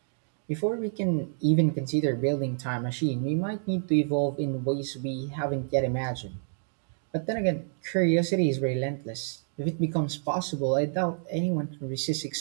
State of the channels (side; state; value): left; silent; digital silence